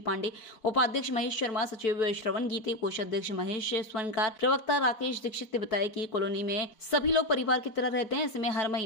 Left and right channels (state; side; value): late; right; 4.6 ms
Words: उपाध्यक्ष महेश शर्मा, सचिव श्रवण गीते, कोषाध्यक्ष महेश स्वर्णकार, प्रवक्ता राकेश दीक्षित ने बताया कि कॉलोनी में सभी लोग परिवार की तरह रहते हैं। ऐसे में हर